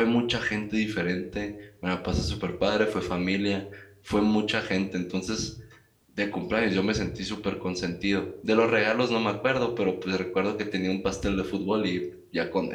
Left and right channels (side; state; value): both; identical; correlation 1.00